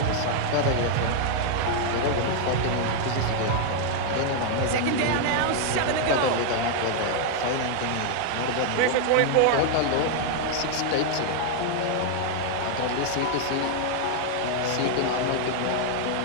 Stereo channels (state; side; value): different; both; correlation 0.00